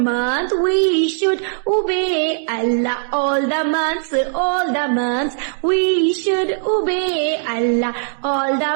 We should obey Allah all the months, all the months. We should obey Allah all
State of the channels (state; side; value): silent; left; digital silence